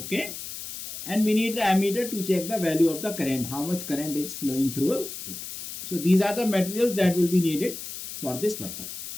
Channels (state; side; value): noise; left; hiss, 9 dB below the sound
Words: and we need the ammeter to check the value of the current, how much current is flowing through it. So these are the materials that will be needed for this purpose.